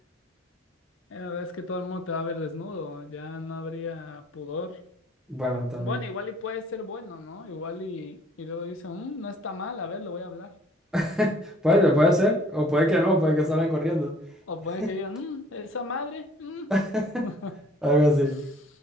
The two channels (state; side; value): normal; both; correlation 0.57